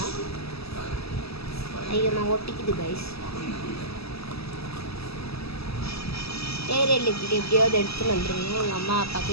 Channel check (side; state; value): right; late; 0.78 ms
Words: ஐயோ நான் ஒட்டிக்குது கைஸ். ஏரியல் இப்படி எப்படியாவது எடுத்துகிட்டு வந்துடுங்க. எங்கள் அம்மா அப்பா